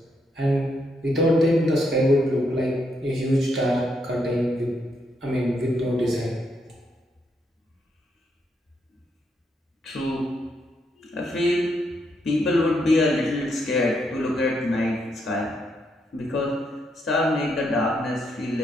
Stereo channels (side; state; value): both; normal; correlation 0.78